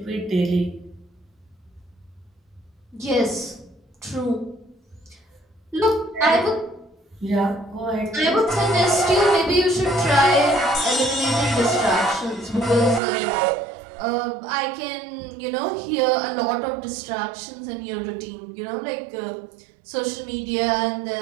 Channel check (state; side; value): drops out; left; at 13.0 s